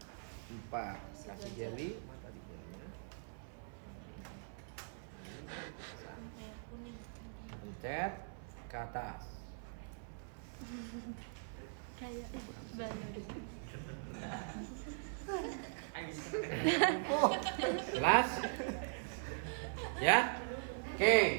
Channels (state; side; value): silent; left; 50 dB below the other